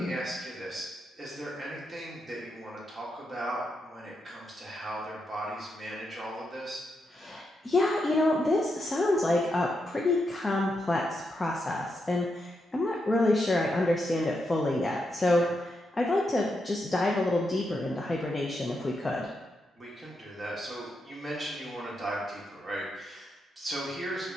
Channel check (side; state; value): both; normal; correlation 0.83